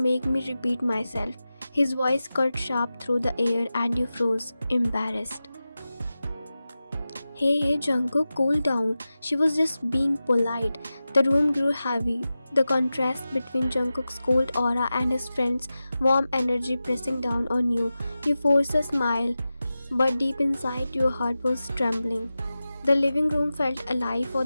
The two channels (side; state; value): both; inverted; correlation -0.94